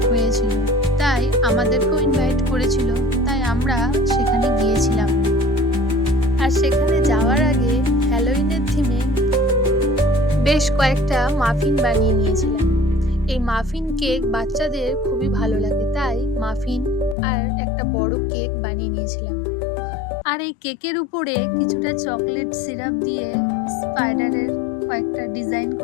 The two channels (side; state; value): right; drops out; at 17.2 s